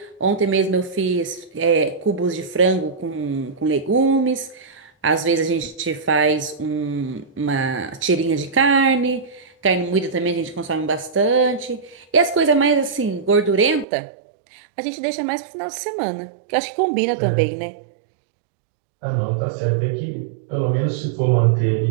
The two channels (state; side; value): drops out; left; at 13.9 s